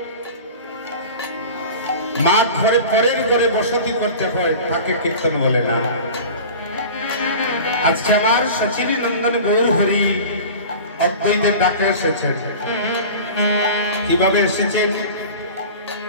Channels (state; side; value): inverted; both; correlation -0.36